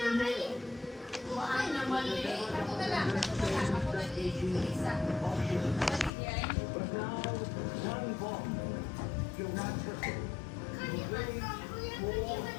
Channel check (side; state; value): right; drops out; at 6.1 s